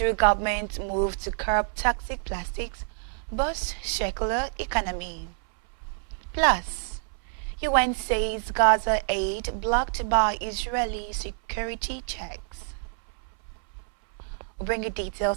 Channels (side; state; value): left; silent; 60 dB below the other